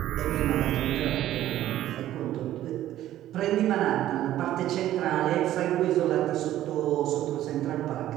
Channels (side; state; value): left; quieter; 13.2 dB